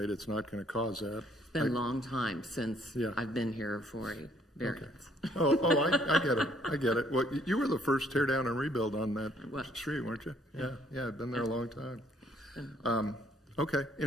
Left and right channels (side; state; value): both; normal; correlation 0.65